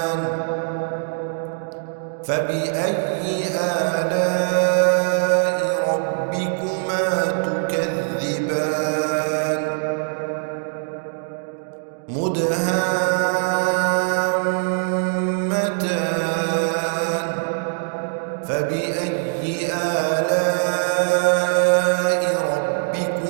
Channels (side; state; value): left; silent; 63 dB below the other